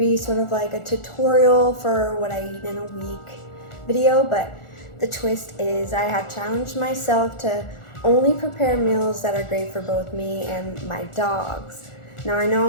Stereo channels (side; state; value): right; late; 1.4 ms